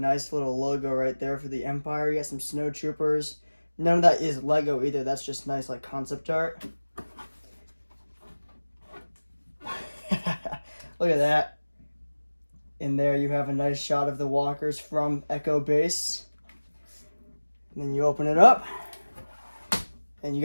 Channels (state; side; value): inverted; both; correlation -1.00